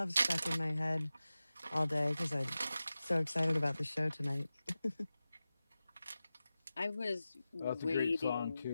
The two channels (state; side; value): inverted; both; correlation -0.95